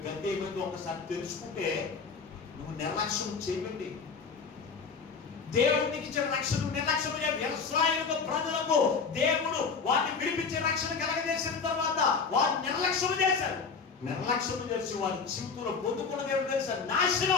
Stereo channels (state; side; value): quieter; right; 5.3 dB